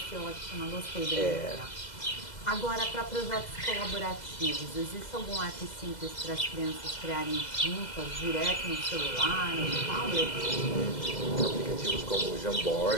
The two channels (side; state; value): right; late; 2.0 ms